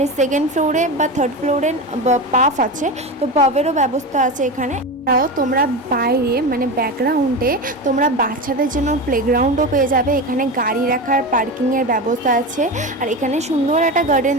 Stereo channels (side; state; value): both; normal; correlation 0.22